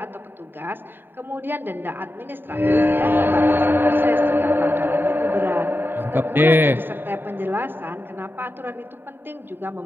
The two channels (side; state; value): left; late; 0.096 ms